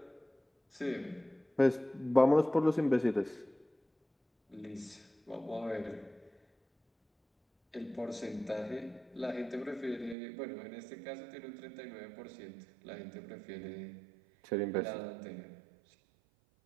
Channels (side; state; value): left; drops out; at 10.2 s